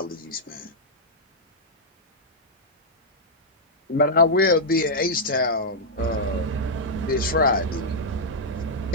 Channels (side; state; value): both; normal; correlation -0.08